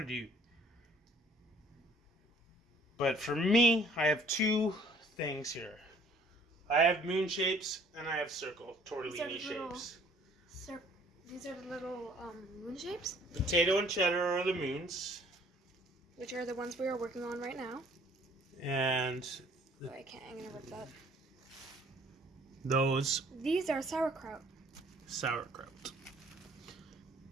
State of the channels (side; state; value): both; normal; correlation 0.58